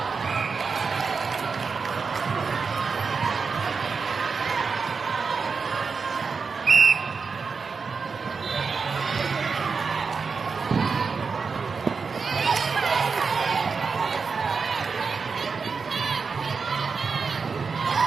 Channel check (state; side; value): quieter; left; 5.1 dB